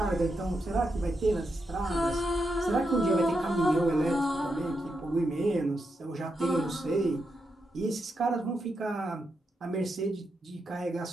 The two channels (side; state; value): both; normal; correlation 0.84